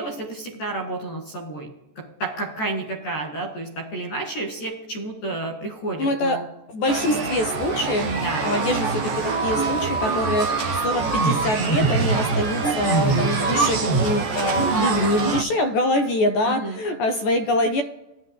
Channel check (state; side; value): late; right; 14 ms